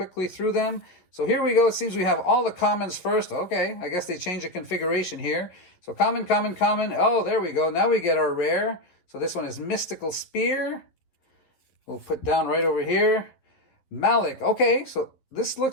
through them. So here we go. It seems we have all the commons first. Okay, I guess they changed the configuration here. So common, common, common. Oh, there we go. Now we get our rare. So this one is Mystical Spear. We'll put down right over here. Malik. Okay, so this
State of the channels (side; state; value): right; late; 11 ms